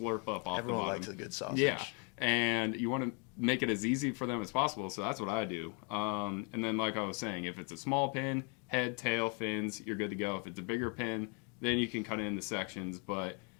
up off the bottom. Likes a good sausage. Yeah, and you want to make it as easy for them as possible, so that's what I do. And then like I was saying, if it's a small pin, head, tail, fins, you're good to go. If it's a bigger pin, then you can cut it into sections. But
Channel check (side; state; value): right; quieter; 37.1 dB